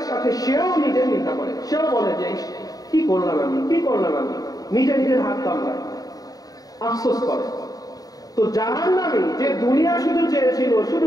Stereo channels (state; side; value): late; right; 0.18 ms